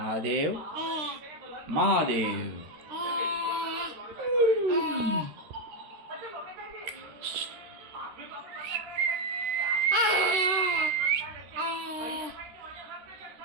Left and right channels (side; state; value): left; late; 13 ms